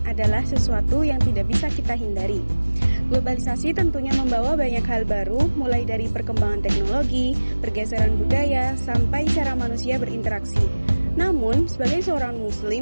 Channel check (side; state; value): both; inverted; correlation -1.00